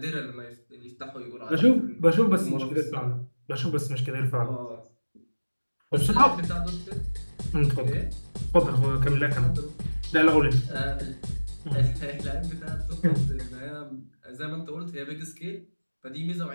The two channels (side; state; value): both; inverted; correlation -1.00